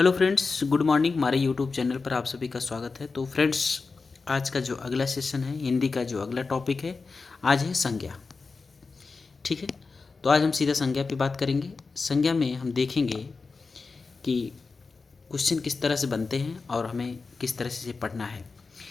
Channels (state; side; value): quieter; right; 4.3 dB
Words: friends, good morning. हमारे YouTube channel पर आप सभी का स्वागत है। तो फ्रेंड्स, आज का जो अगला सेशन है, हिंदी का जो अगला टॉपिक है, आज है संज्ञा। ठीक है, तो आज हम सीधा संज्ञा पे बात करेंगे। संज्ञा में हम देखेंगे कि क्वेश्चन किस तरह से बनते हैं और हमें किस तरह से पढ़ना है।